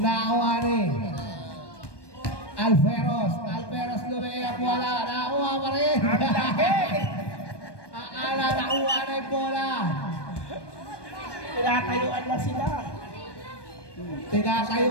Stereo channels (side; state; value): right; late; 1.2 ms